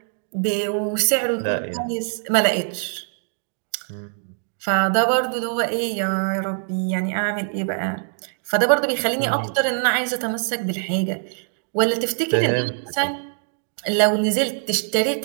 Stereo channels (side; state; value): left; silent; 57 dB below the other